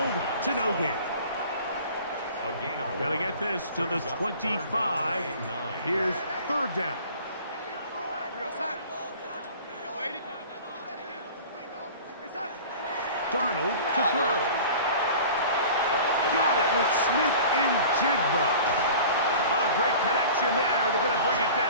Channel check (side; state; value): both; inverted; correlation -0.42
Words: to no gain. Got to get this to the 25. Here's 3rd down. Darnold to throw. Got it with Smith and Jigba. A great connection there. They're going to bring it